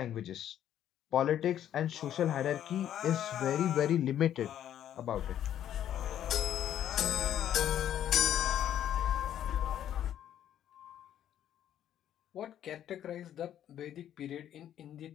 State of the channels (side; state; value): right; quieter; 10.8 dB